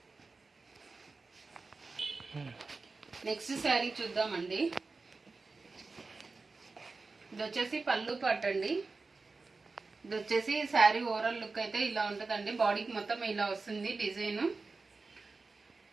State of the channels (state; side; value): quieter; left; 4.0 dB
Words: నెక్స్ట్ శారీ చూద్దామండి. ఇది వచ్చేసి పళ్ళు పార్ట్ అండి. ఇది వచ్చేసి శారీ ఓవరాల్ లుక్ అయితే ఇలా ఉంటుందండి. బాడీకి మొత్తం ఇలా వస్తుంది డిజైన్.